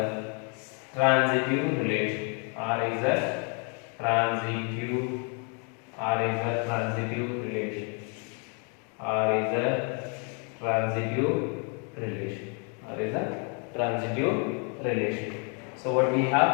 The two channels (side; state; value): right; quieter; 38.0 dB